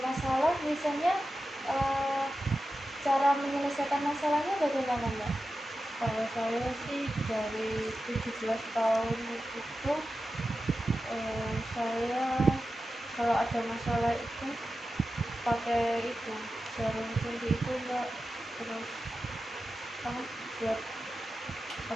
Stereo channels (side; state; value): both; normal; correlation 0.92